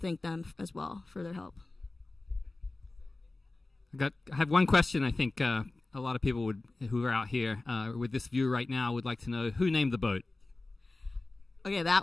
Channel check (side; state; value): right; quieter; 3.1 dB